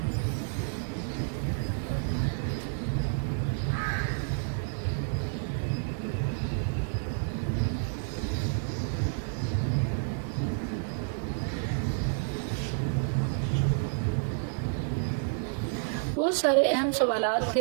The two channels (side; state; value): left; silent; digital silence